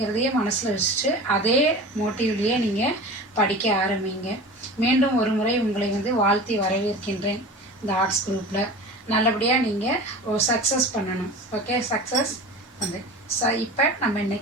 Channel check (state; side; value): normal; both; correlation 0.35